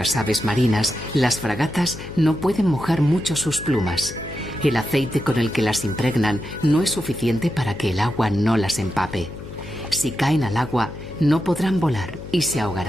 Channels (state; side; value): noise; left; hum, 13 dB below the sound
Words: aves marinas, las fragatas no pueden mojar mucho sus plumas. El aceite con el que las impregnan no es suficiente para que el agua no las empape. Si caen al agua, no podrán volar y se